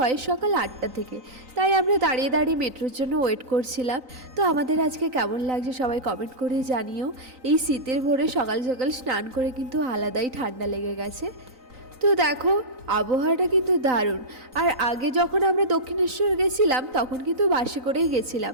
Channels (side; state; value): left; late; 3.9 ms